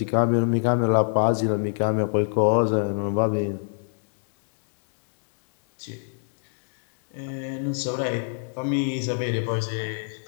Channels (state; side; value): silent; right; digital silence